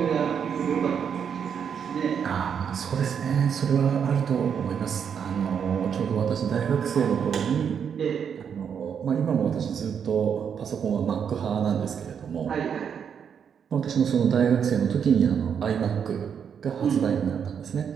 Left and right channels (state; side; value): quieter; left; 7.5 dB